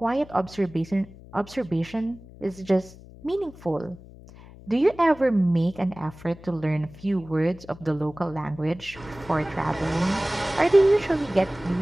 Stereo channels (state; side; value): noise; left; hum, 19 dB below the sound